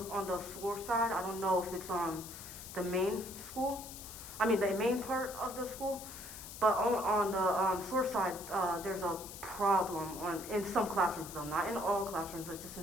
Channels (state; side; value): noise; left; hiss, 12 dB below the sound